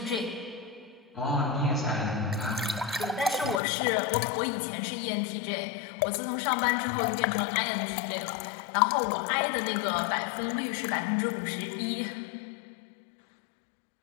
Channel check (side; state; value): right; drops out; at 3.6 s